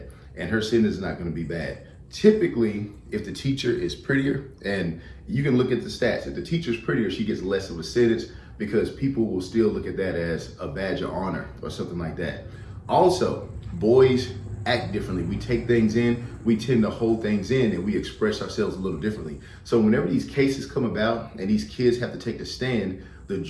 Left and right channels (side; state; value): both; identical; correlation 1.00